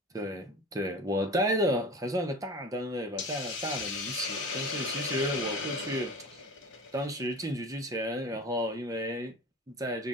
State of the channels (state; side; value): normal; both; correlation 0.35